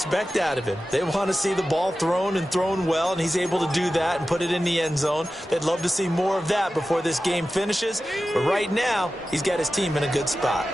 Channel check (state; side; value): normal; both; correlation 0.94